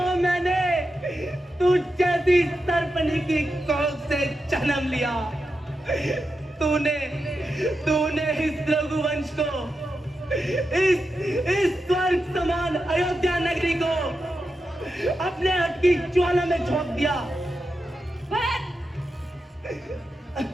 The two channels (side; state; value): both; normal; correlation 0.88